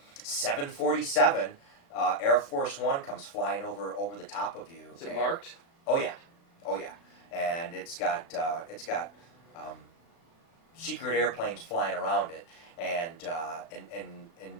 747. Air Force One comes flying over the top of you. Is it marked? Oh yeah, and it's got secret airplanes flying around it, and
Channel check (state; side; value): late; right; 36 ms